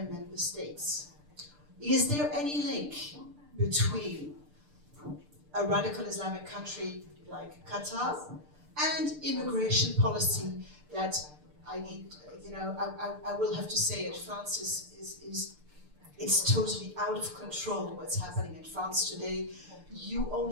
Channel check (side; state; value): left; late; 6.7 ms